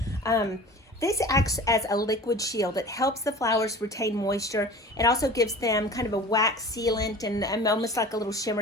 This acts as a liquid shield. It helps the flowers retain moisture. It also gives them kind of a wax sealant and almost like a little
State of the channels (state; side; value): normal; both; correlation 0.40